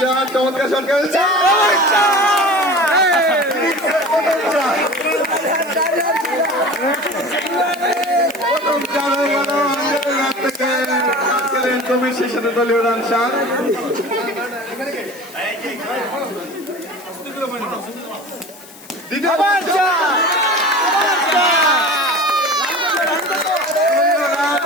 চমৎকার শট খেলছে। তুমি সেই সাথে দলীয় রান 7।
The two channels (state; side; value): noise; left; hiss, 20 dB below the sound